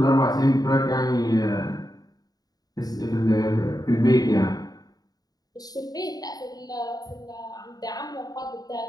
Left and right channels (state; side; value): late; right; 0.18 ms